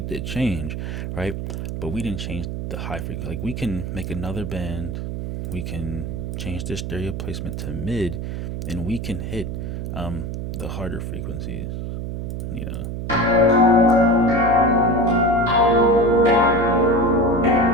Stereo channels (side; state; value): right; noise; hum, 5 dB below the sound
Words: did change, right? But we didn't change the high frequency. Like we can make another band, we can change the stereo placement to mid, and we can hit the harder frequencies, you know.